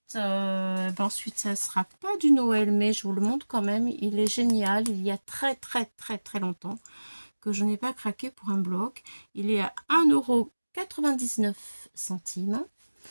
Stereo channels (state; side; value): inverted; both; correlation -1.00